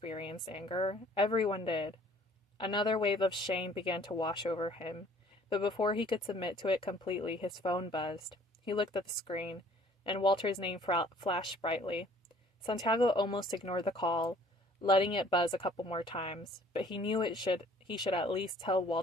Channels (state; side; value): normal; both; correlation 0.55